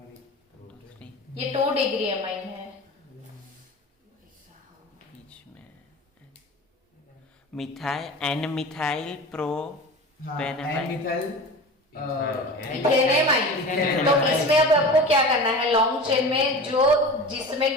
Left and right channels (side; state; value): both; normal; correlation 0.34